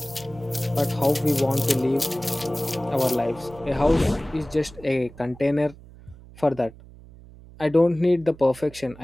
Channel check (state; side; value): noise; right; hum, 20 dB below the sound